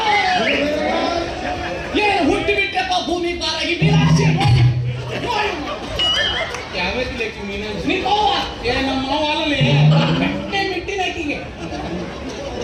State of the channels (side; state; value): both; identical; correlation 1.00